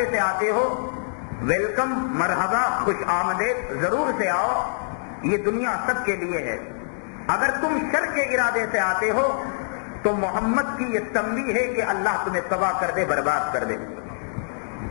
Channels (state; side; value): silent; right; digital silence